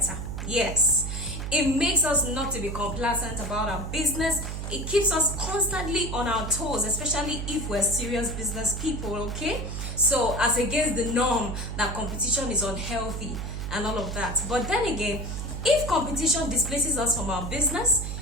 Yes. It makes us not to be complacent about our business. It keeps us constantly on our toes, especially if we're serious business people, okay? So as against the norm that competition is unhealthy and all of that. But then again, if competition displaces us from our business,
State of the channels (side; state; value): right; noise; hum, 5 dB below the sound